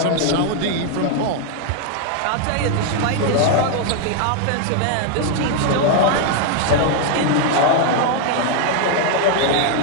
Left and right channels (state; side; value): different; both; correlation 0.00